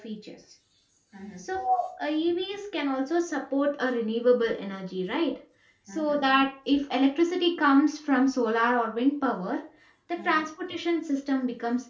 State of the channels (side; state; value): both; identical; correlation 1.00